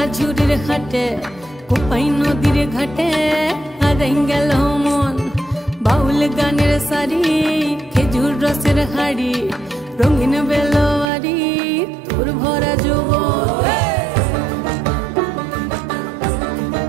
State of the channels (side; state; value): left; drops out; at 11.1 s